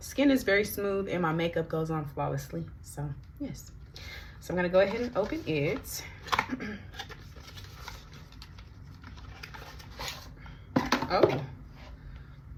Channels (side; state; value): both; identical; correlation 1.00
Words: is very smooth and my makeup goes on flawlessly. So yes, so I'm gonna go ahead and open it. Oh, I